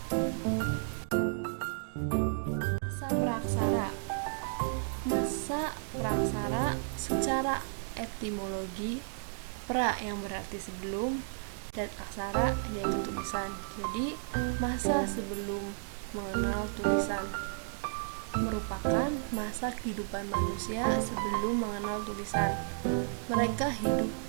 Masa praksara secara etimologi, pra yang berarti sebelum dan aksara yaitu tulisan. Jadi masa sebelum mengenal tulisan merupakan masa kehidupan manusia sebelum mengenal tulisan. Mereka hidup,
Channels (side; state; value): left; silent; digital silence